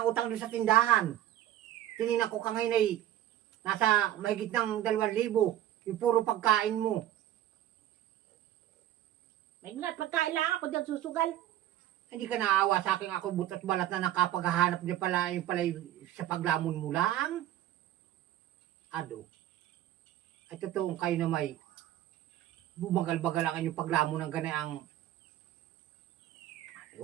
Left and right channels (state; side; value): quieter; left; 12.8 dB